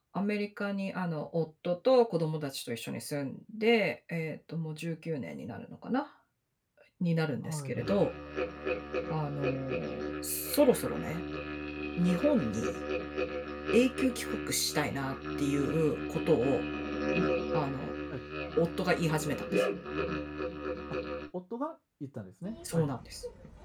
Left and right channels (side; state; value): both; identical; correlation 1.00